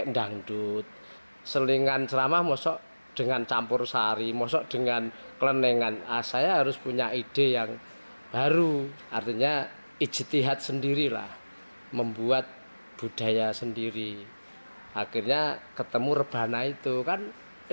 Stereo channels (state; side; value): inverted; both; correlation -1.00